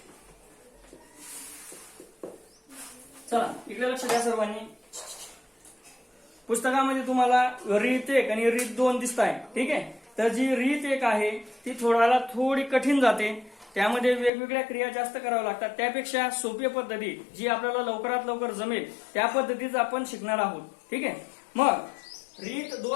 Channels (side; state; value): right; drops out; at 14.3 s